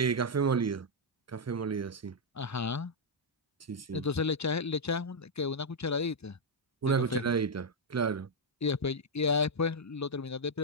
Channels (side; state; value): both; normal; correlation -0.03